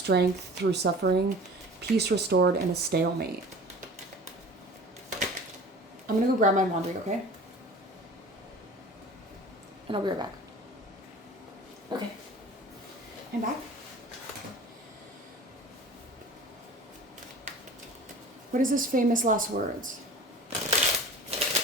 through suffering, peace restored, and a stalemate. I'm gonna go grab my laundry, okay? And I'll be right back. Okay. I'm back. What is this famous last words?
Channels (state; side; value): normal; both; correlation 0.41